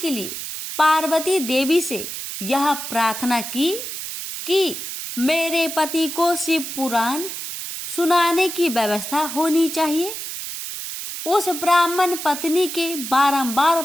लिए पार्वती देवी से यह प्रार्थना की कि मेरे पति को शिव पुराण सुनाने की व्यवस्था होनी चाहिए। उस ब्राह्मण पत्नी के बारंबार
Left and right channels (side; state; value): right; noise; hiss, 7 dB below the sound